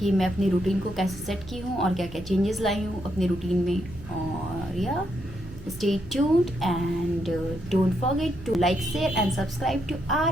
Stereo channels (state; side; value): noise; right; hum, 17 dB below the sound